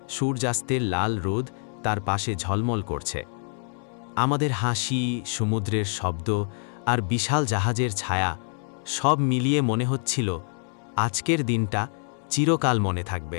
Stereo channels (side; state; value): right; silent; 61 dB below the other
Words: সূর্যাস্তের লাল রোদ তার পাশে ঝলমল করছে। আমাদের হাসি, সমুদ্রের শব্দ আর বিশাল জাহাজের ছায়া সব মিলিয়ে মনে হচ্ছিল আজকের দিনটা চিরকাল মনে